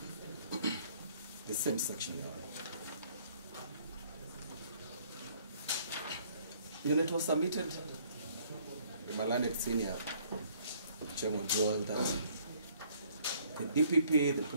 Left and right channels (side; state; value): both; inverted; correlation -0.61